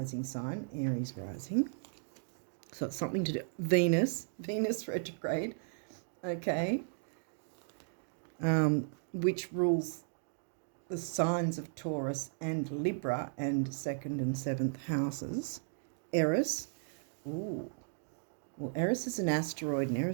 sign, Aries rising. So it's something to do. Venus retrograde, okay, which rules the signs of Taurus and Libra and 2nd and 7th houses. Eris, ooh, well, Eris is an asteroid, and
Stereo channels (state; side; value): silent; left; digital silence